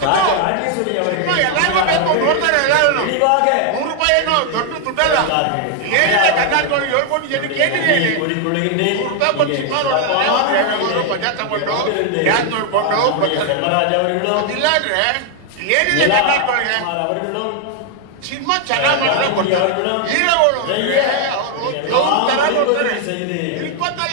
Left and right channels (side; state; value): both; different; correlation 0.00